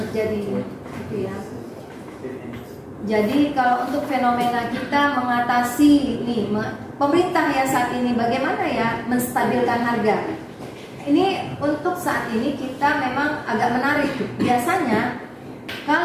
terjadi gitu ya. Jadi kalau untuk fenomena kita mengatasi ini, pemerintah ya saat ini bagaimana ya menstabilkan harga. Ini untuk saat ini kita memang agak menarik. Biasanya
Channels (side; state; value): both; identical; correlation 1.00